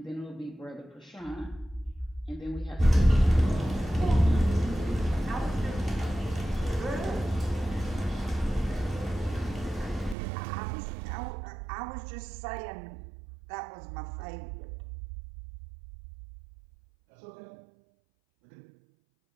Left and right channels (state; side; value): drops out; left; at 10.2 s